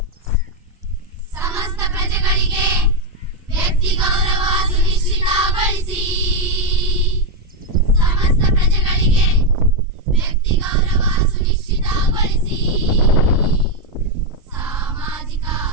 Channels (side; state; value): both; normal; correlation 0.04